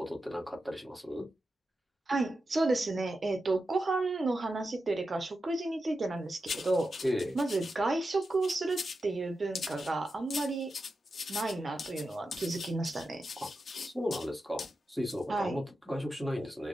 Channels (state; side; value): normal; both; correlation 0.90